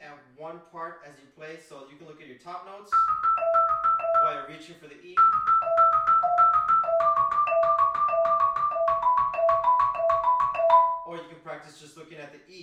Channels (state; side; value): identical; both; correlation 1.00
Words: at one part as you play. So you can look at your top notes while you're reaching for the E. Or you can practice just looking at the